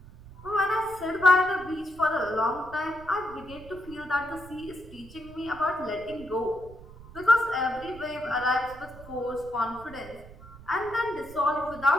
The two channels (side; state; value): right; noise; rumble, 18 dB below the sound